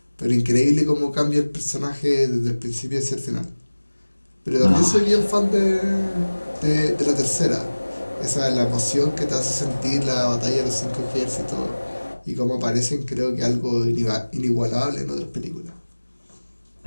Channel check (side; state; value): both; inverted; correlation -1.00